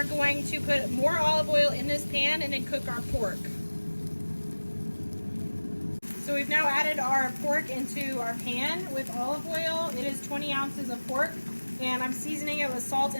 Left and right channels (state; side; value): inverted; both; correlation -1.00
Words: going to put more olive oil in this pan and then cook our pork. So we've now added our pork into our pan with olive oil. It is 20 ounces of pork, and I'm seasoning it with salt